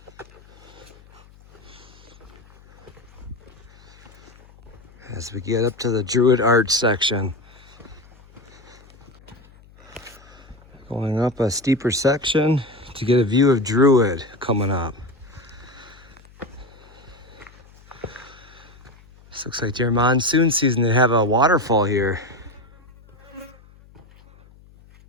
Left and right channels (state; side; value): noise; left; hum, 25 dB below the sound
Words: As we get up to the Druid Arch section. Going up a steeper section to get a view of Druid coming up. This looks like during monsoon season they have a waterfall here.